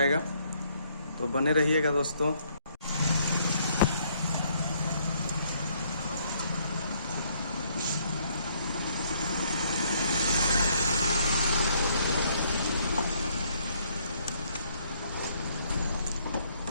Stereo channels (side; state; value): both; inverted; correlation -0.67